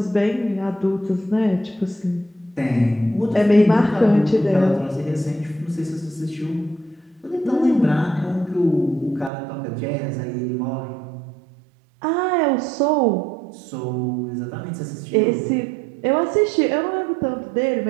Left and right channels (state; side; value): drops out; left; at 9.3 s